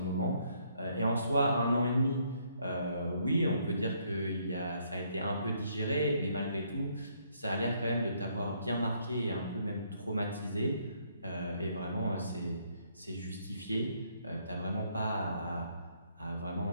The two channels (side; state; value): both; inverted; correlation -0.70